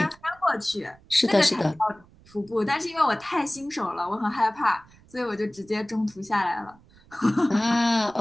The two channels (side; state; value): right; noise; rumble, 27 dB below the sound